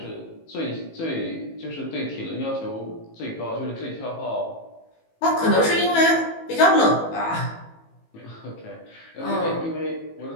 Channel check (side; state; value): right; late; 18 ms